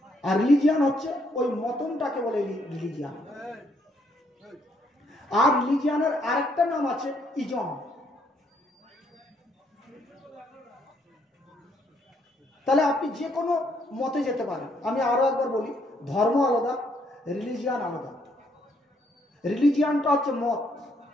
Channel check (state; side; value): normal; both; correlation 0.71